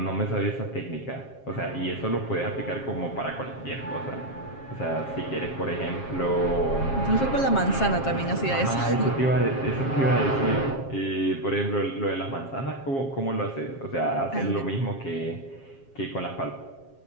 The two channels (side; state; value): right; late; 7.4 ms